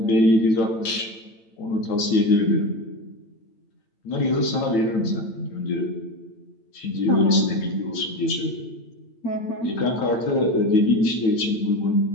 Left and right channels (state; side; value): late; right; 8.9 ms